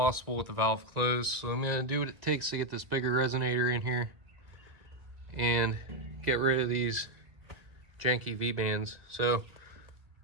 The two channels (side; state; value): left; late; 2.0 ms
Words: with the valve closed. So I'm gonna do what it takes to get this bigger resonator in here and get rid of these janky V-bands. So